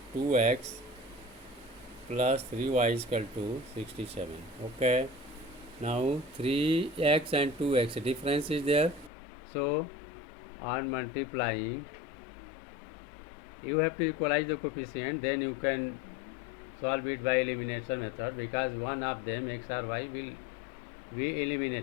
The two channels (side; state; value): right; drops out; at 9.1 s